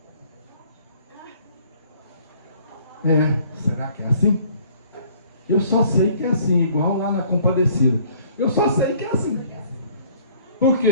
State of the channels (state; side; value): inverted; both; correlation -0.57